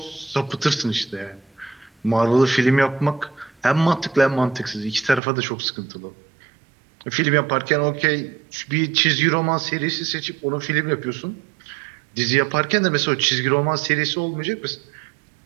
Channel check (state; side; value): drops out; left; at 5.2 s